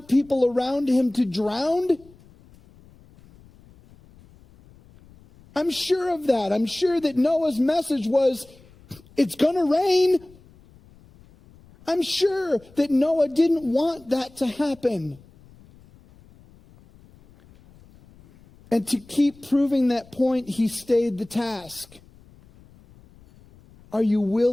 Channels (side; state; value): left; noise; rumble, 26 dB below the sound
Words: people around him to drown. I'm sure of that. I'm sure that Noah's message was, it's going to rain. I'm sure that Noah didn't want that to happen. And to keep proving that point, he stayed the task. Are you